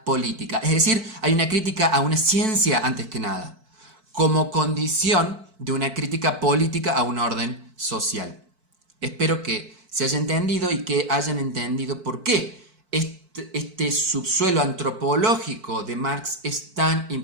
política. Es decir, hay una crítica a una ciencia antes que nada, como condición de una crítica política a un orden social. Espero que se haya entendido y que hayan entendido por qué este subsuelo antropológico de Marx es tan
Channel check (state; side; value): late; left; 4.5 ms